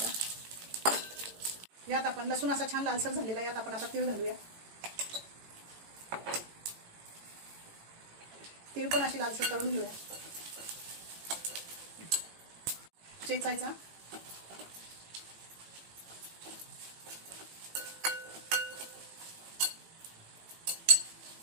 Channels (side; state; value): left; late; 18 ms